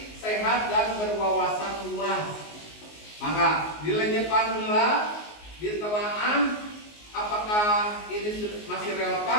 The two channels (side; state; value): right; late; 19 ms